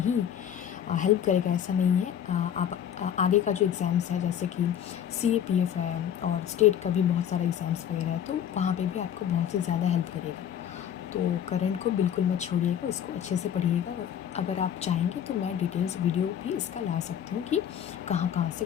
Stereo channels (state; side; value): quieter; right; 9.4 dB